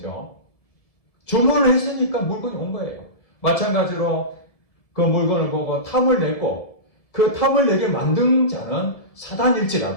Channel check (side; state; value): right; late; 1.7 ms